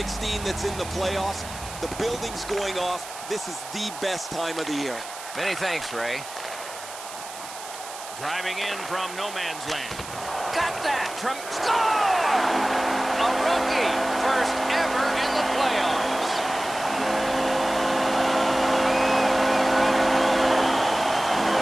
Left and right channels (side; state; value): right; noise; hiss, 13 dB below the sound